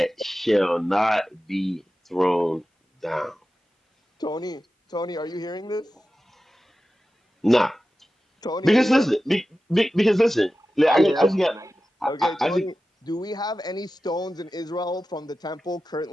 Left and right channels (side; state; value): both; normal; correlation 0.94